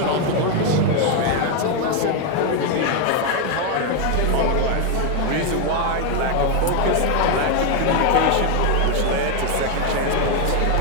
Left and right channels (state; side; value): different; both; correlation 0.01